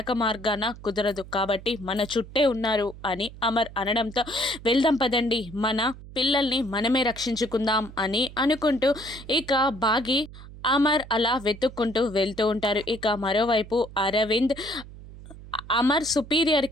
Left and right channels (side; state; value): right; noise; hum, 16 dB below the sound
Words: మార్గాన కుదరదు, కాబట్టి మన చుట్టే ఉన్నారు అని అమర్ అనడంతో వెళ్దాం పదండి, మన పిల్లల్ని మనమే రక్షించుకుందాం అని అనుకుంటూ ఇక బాగి అమర్ అలా వెతుక్కుంటూ వెళ్తూ ఉంటారు. ఇక మరోవైపు అరవింద్ అమర్